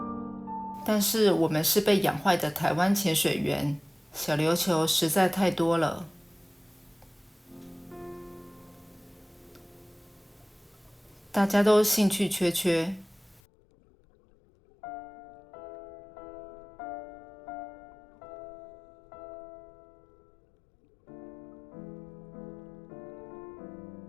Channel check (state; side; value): drops out; right; at 13.4 s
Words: 但是我们是被养坏的台湾潜水员，小琉球实在太多了。大家都兴趣缺缺。